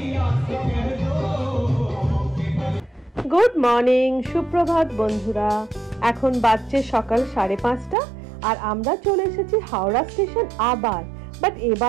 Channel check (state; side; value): drops out; left; at 8.0 s